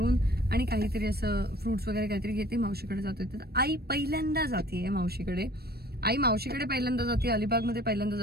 आणि काहीतरी असं फ्रुट्स वगैरे काहीतरी घेते, मावशीकडे जातोय. तर आई पहिल्यांदा जाते मावशीकडे. आई मावशीकडे पहिल्यांदा जाते, अलिबागमध्ये पहिल्यांदा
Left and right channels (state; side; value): late; left; 0.46 ms